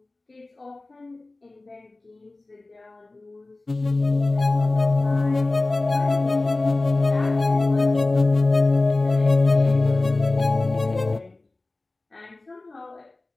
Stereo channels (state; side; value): quieter; right; 3.1 dB